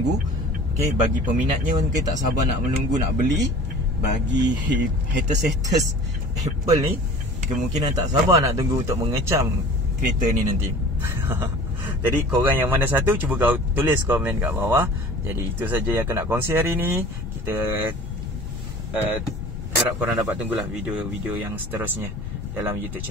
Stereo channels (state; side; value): normal; both; correlation 0.43